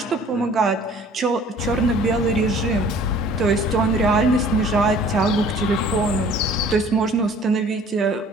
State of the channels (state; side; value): normal; both; correlation 0.51